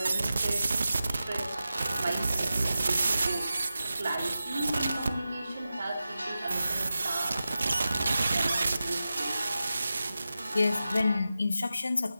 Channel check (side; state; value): both; inverted; correlation -0.92